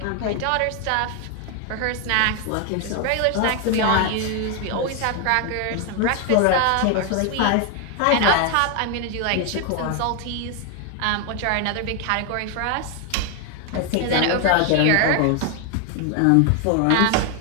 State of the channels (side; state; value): both; different; correlation 0.01